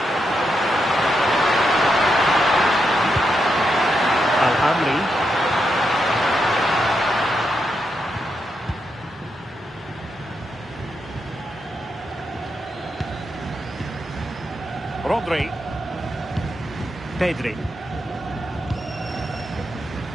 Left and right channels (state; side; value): normal; both; correlation 0.83